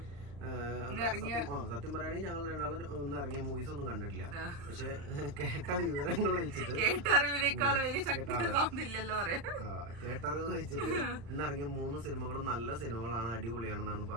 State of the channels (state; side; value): late; left; 35 ms